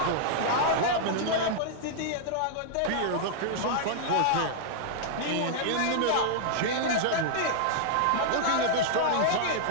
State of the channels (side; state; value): both; different; correlation -0.01